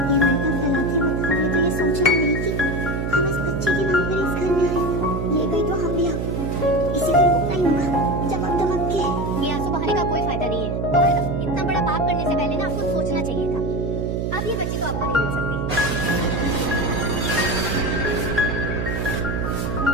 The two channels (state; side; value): noise; right; hum, 1 dB below the sound